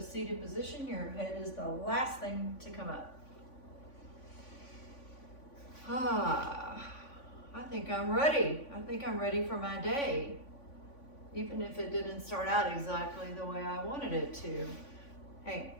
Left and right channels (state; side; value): late; right; 3.5 ms